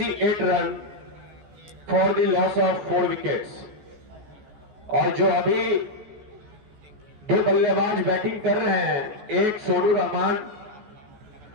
run for the loss of 4 wickets. और जो अभी 2 बल्लेबाज बैटिंग कर रहे हैं, एक सोनू रहमान,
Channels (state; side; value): late; left; 14 ms